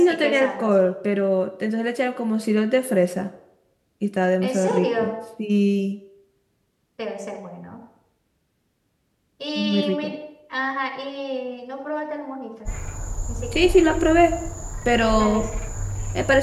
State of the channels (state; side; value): identical; both; correlation 1.00